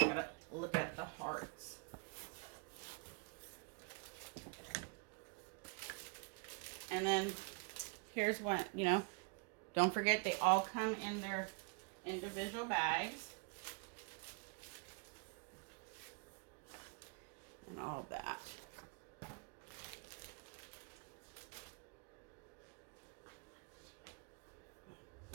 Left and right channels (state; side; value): quieter; left; 34.2 dB